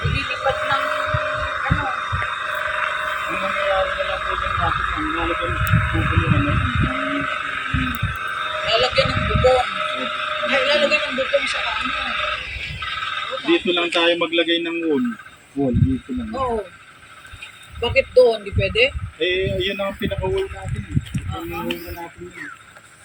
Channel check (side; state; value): both; identical; correlation 1.00